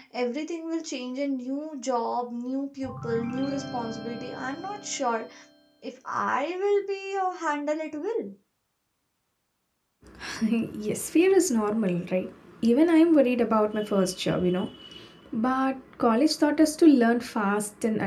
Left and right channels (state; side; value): identical; both; correlation 1.00